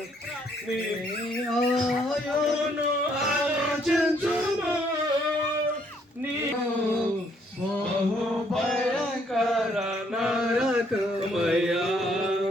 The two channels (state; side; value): normal; both; correlation 0.68